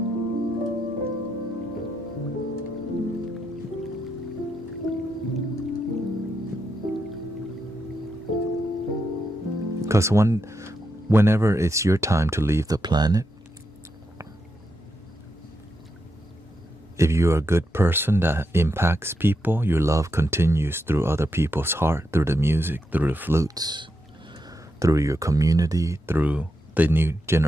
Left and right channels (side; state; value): both; normal; correlation 0.83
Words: Because whenever it's your time to leave the planet, if you're a good person that impacts people, your love continues through other people's heart, through the music, through the flutes, through your community, through the new